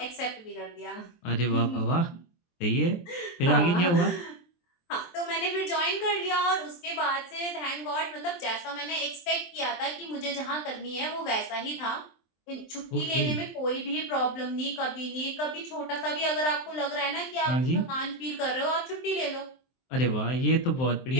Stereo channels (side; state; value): right; late; 23 ms